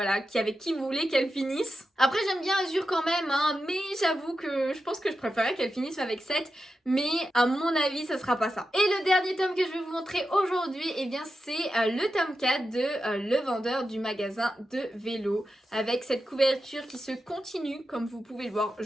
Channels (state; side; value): normal; both; correlation 0.90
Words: avec qui vous voulez qu'elle finisse. Après j'aime bien Azur quand même, hein, mais j'avoue que je pense que je préférais qu'elle finisse avec 7, mais à mon avis ça sera pas ça. Et le dernier tome que je vais vous montrer aujourd'hui, eh bien c'est le tome 4 de Le Vendeur du magasin de vélo, avec cette couverture qui se continue, comme vous pouvez le voir.